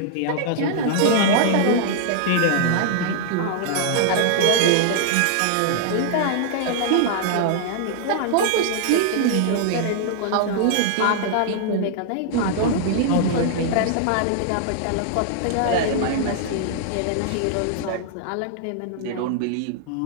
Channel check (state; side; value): different; both; correlation -0.01